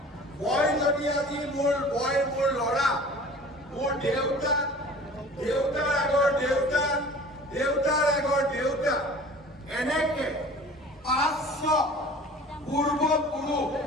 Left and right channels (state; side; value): normal; both; correlation 0.44